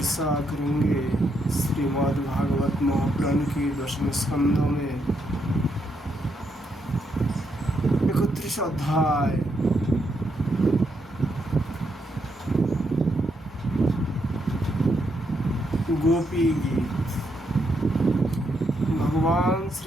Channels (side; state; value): both; normal; correlation 0.78